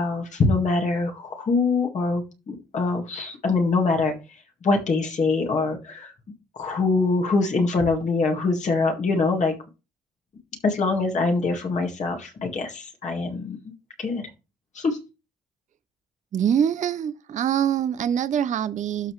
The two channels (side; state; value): both; normal; correlation 0.62